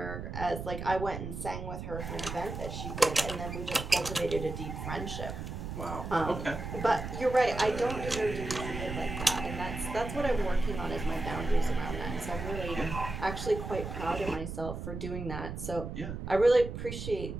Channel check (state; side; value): noise; right; rumble, 7 dB below the sound